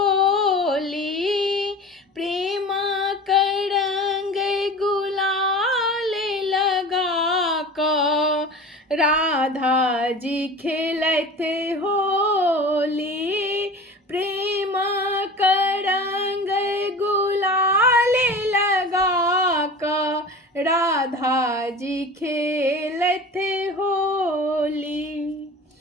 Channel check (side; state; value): both; normal; correlation 0.36